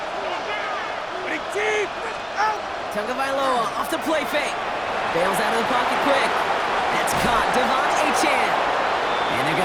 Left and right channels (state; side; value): identical; both; correlation 1.00